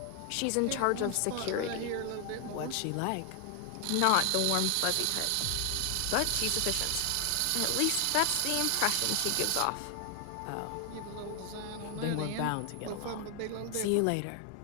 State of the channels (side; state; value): both; different; correlation 0.00